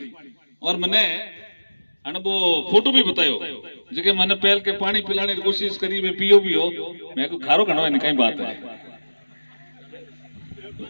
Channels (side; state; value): both; inverted; correlation -1.00